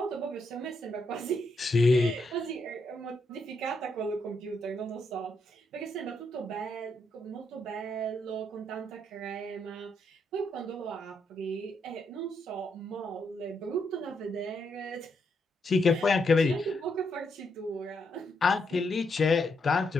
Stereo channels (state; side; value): normal; both; correlation 0.79